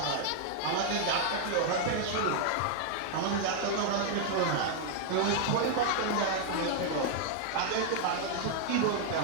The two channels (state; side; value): different; both; correlation 0.00